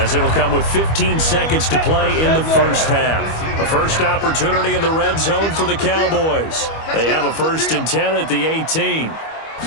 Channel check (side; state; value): right; late; 25 ms